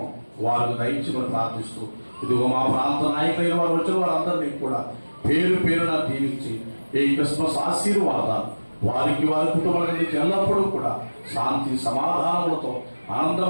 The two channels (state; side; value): inverted; both; correlation -1.00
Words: వారికి దయచేయమని ప్రార్థిస్తూ ఇదిగో మా ప్రాంత నాయకులైన వారు వచ్చిన వారందరినీ కూడా పేరు పేరున దీవించి ఈ క్రిస్మస్ ఆశీర్వాదాలు వారికి, వారి కుటుంబానికి ఎల్లప్పుడూ కూడా శాంతి సమాధానములతో